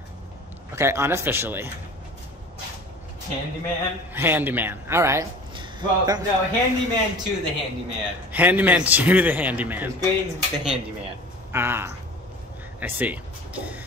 Okay, unofficially. Handyman? Handyman, all right. Well, no, handyman to the handyman. Handyman to the handyman. His grade's the handyman. Ah, I see.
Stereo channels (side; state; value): both; normal; correlation 0.41